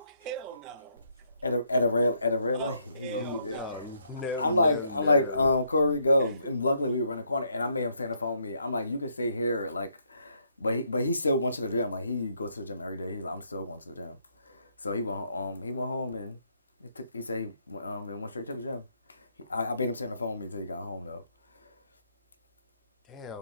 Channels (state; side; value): inverted; both; correlation -0.73